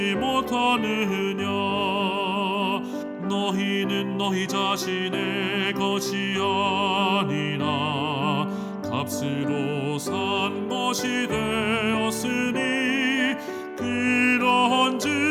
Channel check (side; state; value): both; identical; correlation 1.00